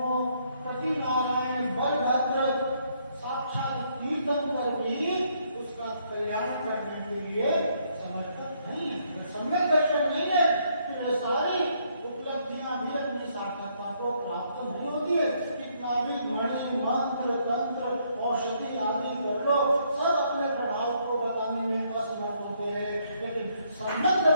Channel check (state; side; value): inverted; both; correlation -0.71